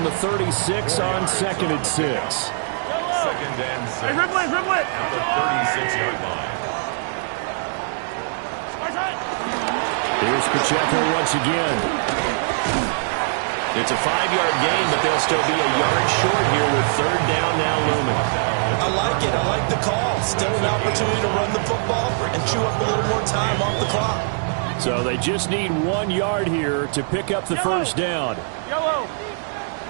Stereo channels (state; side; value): silent; left; digital silence